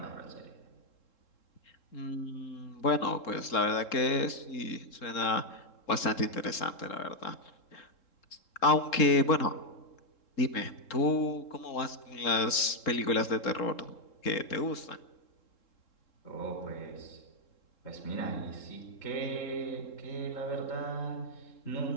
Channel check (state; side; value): late; right; 3.7 ms